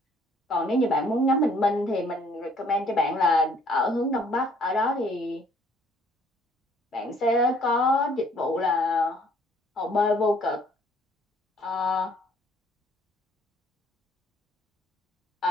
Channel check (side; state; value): both; normal; correlation 0.60